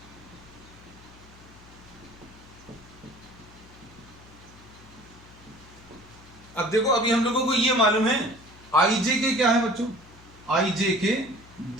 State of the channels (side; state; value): left; noise; hum, 22 dB below the sound